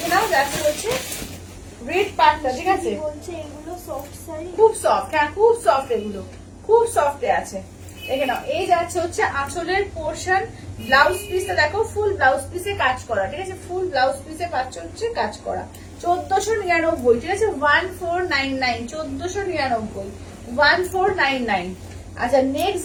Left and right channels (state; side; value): identical; both; correlation 1.00